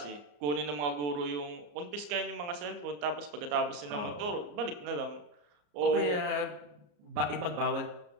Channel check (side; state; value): left; late; 34 ms